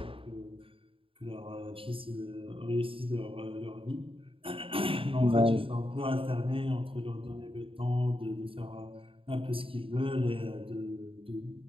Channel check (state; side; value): late; left; 0.26 ms